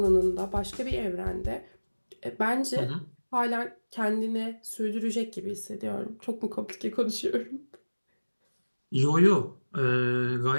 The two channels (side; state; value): both; inverted; correlation -1.00